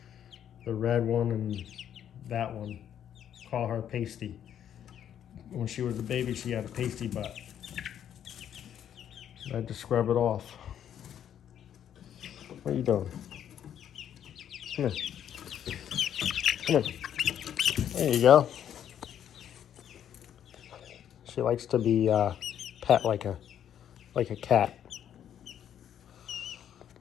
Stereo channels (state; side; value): quieter; right; 9.7 dB